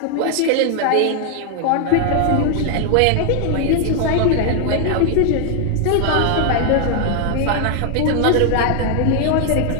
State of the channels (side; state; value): both; different; correlation 0.00